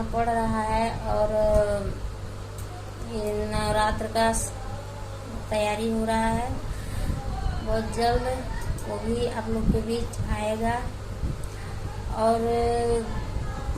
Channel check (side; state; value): both; identical; correlation 1.00